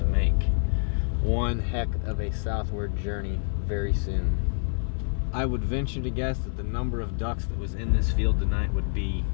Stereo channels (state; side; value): silent; right; 60 dB below the other